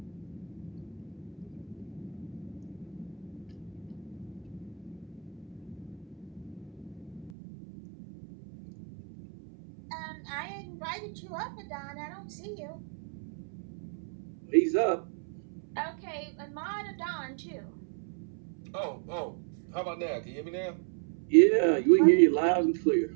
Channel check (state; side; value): drops out; left; at 7.3 s